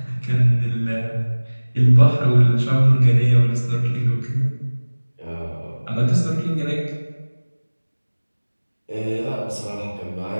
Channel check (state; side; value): inverted; both; correlation -1.00